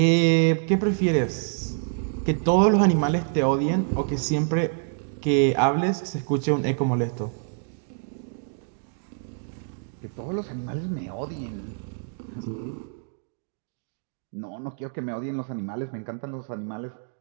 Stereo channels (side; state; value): left; silent; digital silence